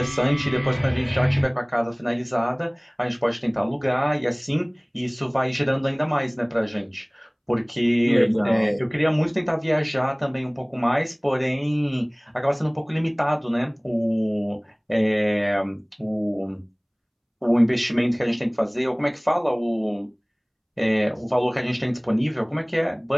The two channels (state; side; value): identical; both; correlation 1.00